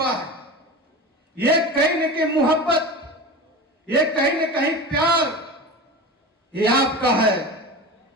है। ये कहीं न कहीं मोहब्बत, ये कहीं न कहीं प्यार, ये आपका है।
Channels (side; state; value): both; normal; correlation 0.30